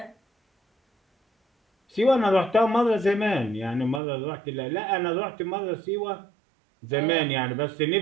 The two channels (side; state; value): left; drops out; at 4.0 s